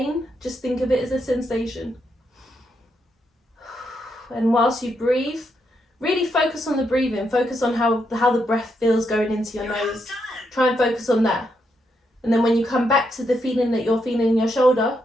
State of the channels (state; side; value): normal; both; correlation 0.80